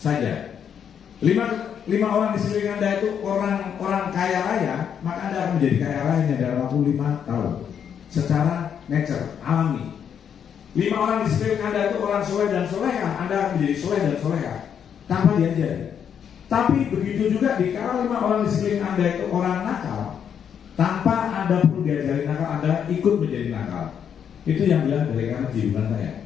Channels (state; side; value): quieter; right; 8.1 dB